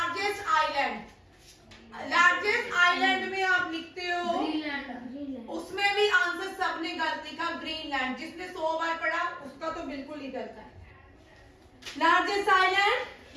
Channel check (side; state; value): both; identical; correlation 1.00